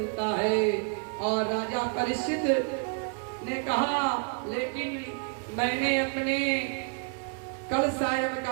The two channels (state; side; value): quieter; left; 38.8 dB